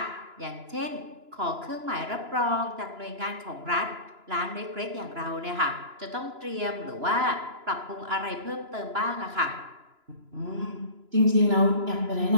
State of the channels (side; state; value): left; late; 2.9 ms